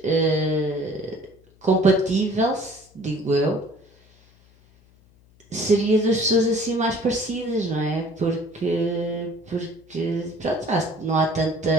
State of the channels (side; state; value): left; noise; hum, 29 dB below the sound